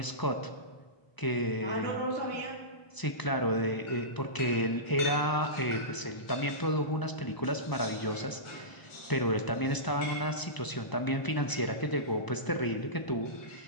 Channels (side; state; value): right; late; 1.0 ms